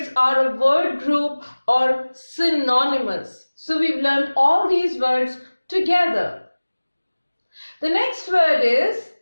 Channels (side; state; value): both; inverted; correlation -1.00